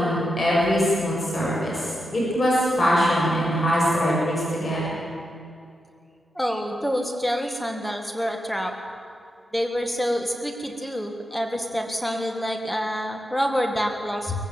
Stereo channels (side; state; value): both; normal; correlation 0.87